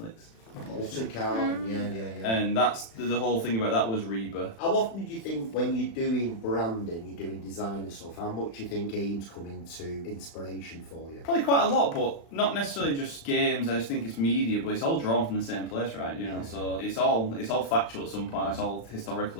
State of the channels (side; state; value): right; late; 36 ms